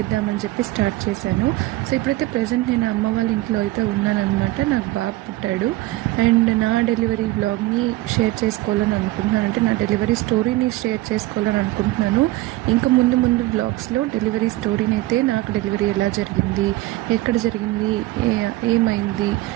చెప్పి స్టార్ట్ చేశాను. సో ఇప్పుడైతే ప్రజెంట్ నేను అమ్మ వాళ్ళ ఇంట్లో అయితే ఉన్నానమాట. నాకు బాబు పుట్టాడు అండ్ నా డెలివరీ వ్లాగ్ని షేర్ చేసుకోవాలని అనుకుంటున్నాను. అంటే నా డెలివరీ స్టోరీని షేర్ చేసుకోవాలని అనుకుంటున్నాను. ఇంకా ముందు వ్లాగ్స్లో డెలివరీ స్టోరీని అయితే, నాకు డెలివరీ ఎలా జరిగింది, ఎక్కడ జరిగింది, ఏమైంది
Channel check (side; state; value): left; quieter; 18.2 dB